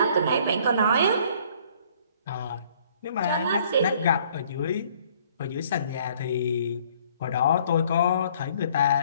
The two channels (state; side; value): inverted; both; correlation -0.59